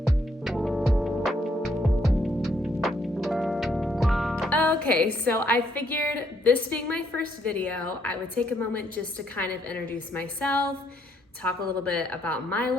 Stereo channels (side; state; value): both; normal; correlation 0.71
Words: Okay, so I figured this being my first video, I would take a moment just to kind of introduce myself, talk a little bit about my